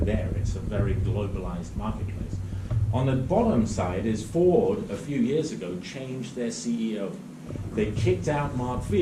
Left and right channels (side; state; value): both; identical; correlation 1.00